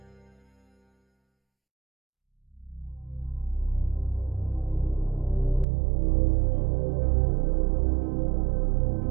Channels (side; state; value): left; drops out; at 5.7 s